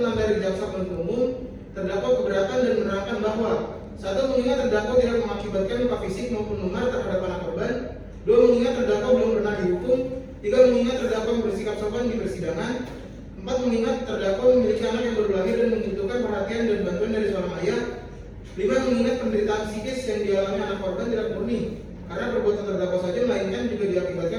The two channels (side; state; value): both; identical; correlation 1.00